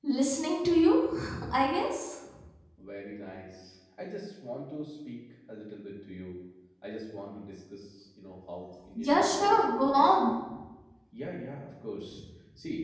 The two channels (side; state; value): both; identical; correlation 1.00